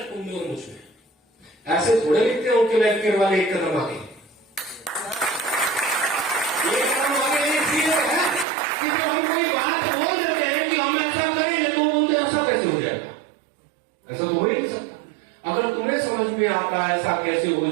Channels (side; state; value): left; drops out; at 8.5 s